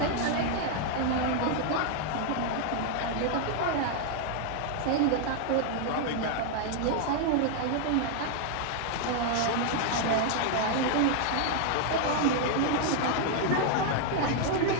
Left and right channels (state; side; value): different; both; correlation 0.00